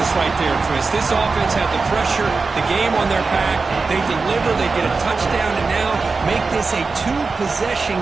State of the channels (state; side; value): quieter; left; 4.2 dB